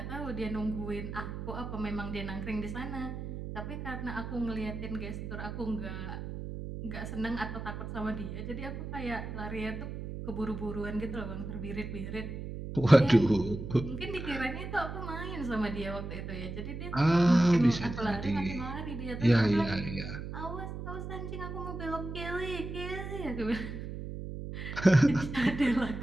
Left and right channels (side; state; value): right; noise; hum, 7 dB below the sound